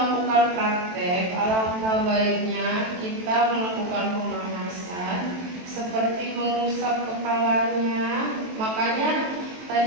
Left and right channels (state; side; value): late; left; 23 ms